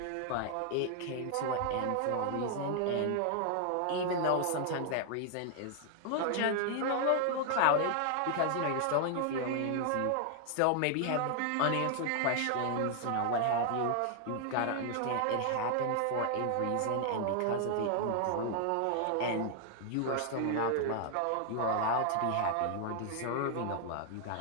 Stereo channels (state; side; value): different; both; correlation 0.00